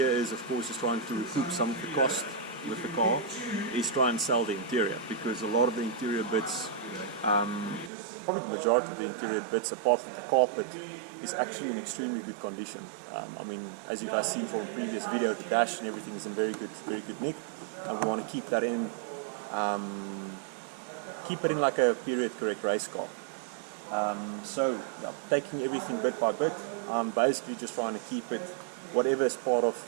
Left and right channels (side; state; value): left; drops out; at 7.9 s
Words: is, of course, is trying to recoup some of the cost with the car, is try and sell the interior, because a lot of the interior bits, probably the majority of the interior bits apart from the carpet, is actually in extremely good condition. I mean, as you guys seen from the previous video, the dash and everything is in very good nick, and we want to keep that in, keep it in like a period correct race car. So yeah, taking everything bit by bit, basically just trying to keep it, whatever